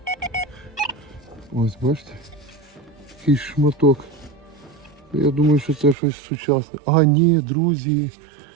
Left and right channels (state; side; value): drops out; left; at 6.0 s